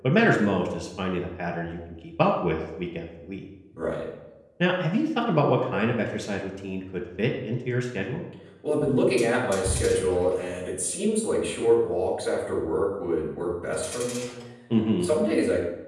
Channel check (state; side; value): identical; both; correlation 1.00